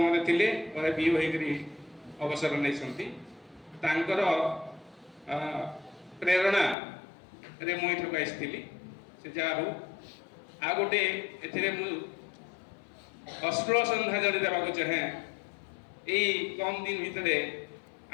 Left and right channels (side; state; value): right; drops out; at 6.8 s